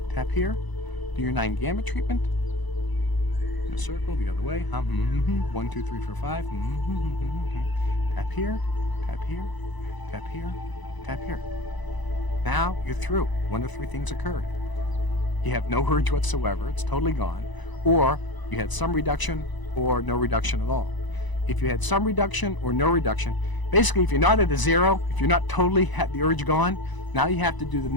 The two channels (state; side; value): late; right; 1.0 ms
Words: tap here. Do your 9 gamut treatment. In a circle, the other way. 1, 2, 3, 4, 5. Tap here, tap here, tap here, tap here. Now you're through. One of 3 things occurred. You have no urge whatsoever. It's totally gone. Or you had some reduction or no reduction at all. If you had some reduction or no reduction, basically if you're not at a 0, if you're not totally had the urge gone, now you have to do the